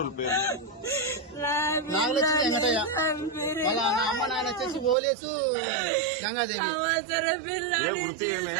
పేరు? నాగలక్ష్మి వెంకటయ్య. వాళ్ళ అమ్మ నాయన వచ్చేసి ఓలేసు గంగాదేవి. ఏ వృత్తి ఏమే?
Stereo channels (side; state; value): left; drops out; at 5.0 s